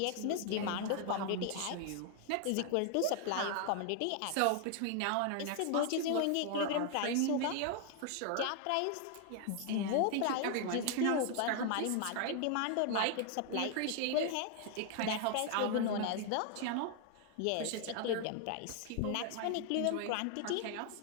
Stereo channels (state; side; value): different; both; correlation 0.00